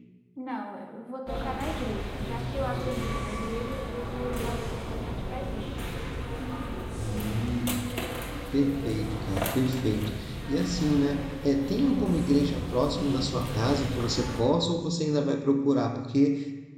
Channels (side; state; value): both; identical; correlation 1.00